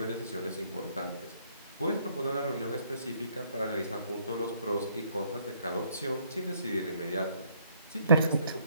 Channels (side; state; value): both; inverted; correlation -0.67